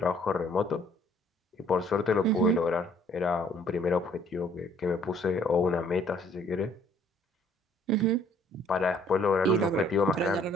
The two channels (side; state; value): both; normal; correlation 0.61